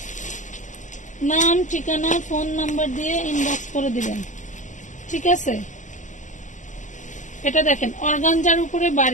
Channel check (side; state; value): right; late; 0.36 ms